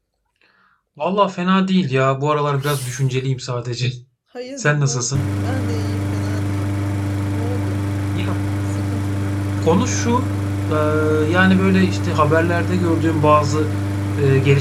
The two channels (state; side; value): identical; both; correlation 1.00